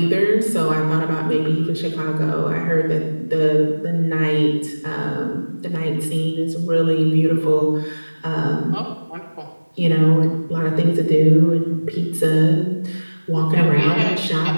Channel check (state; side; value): inverted; both; correlation -1.00